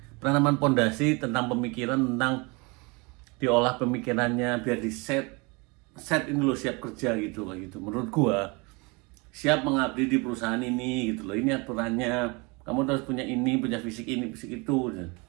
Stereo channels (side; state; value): left; quieter; 28.3 dB